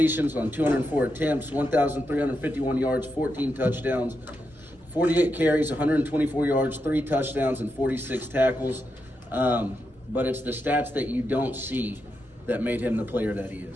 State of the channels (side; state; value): both; normal; correlation 0.85